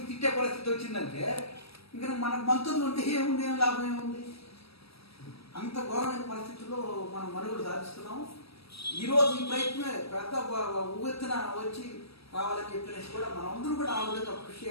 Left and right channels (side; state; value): right; late; 0.77 ms